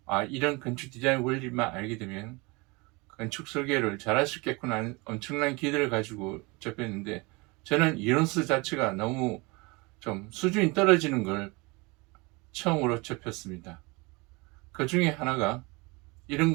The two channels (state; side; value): quieter; left; 26.3 dB